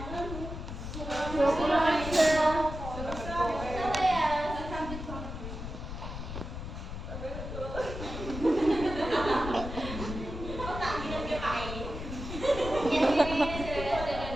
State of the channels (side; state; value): left; noise; rumble, 7 dB below the sound